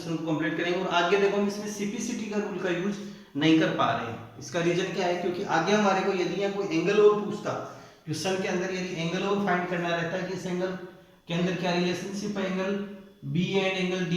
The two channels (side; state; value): both; identical; correlation 1.00